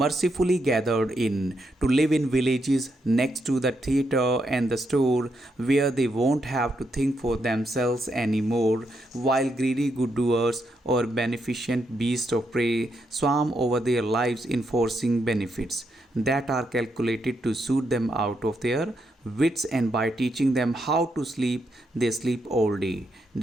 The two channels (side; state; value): both; normal; correlation 0.80